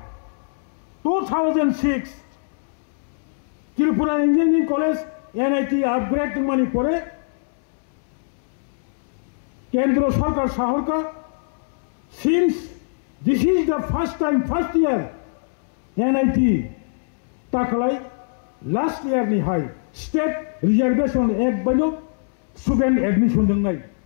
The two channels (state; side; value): silent; right; 64 dB below the other